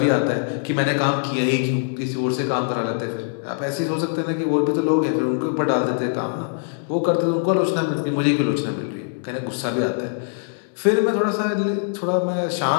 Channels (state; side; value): silent; right; digital silence